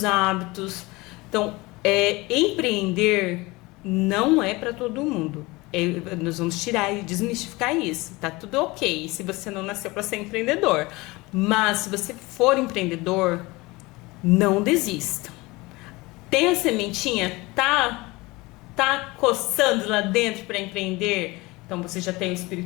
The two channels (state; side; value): quieter; right; 22.6 dB